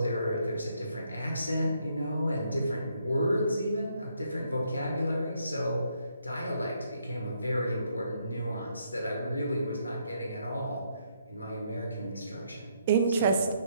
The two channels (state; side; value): inverted; both; correlation -0.73